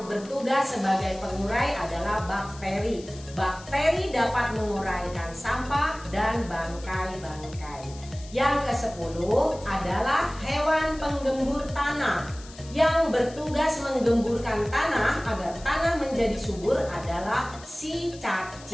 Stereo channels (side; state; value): left; noise; hiss, 19 dB below the sound